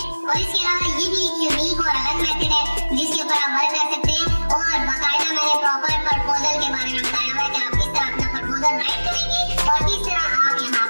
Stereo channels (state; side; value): inverted; both; correlation -1.00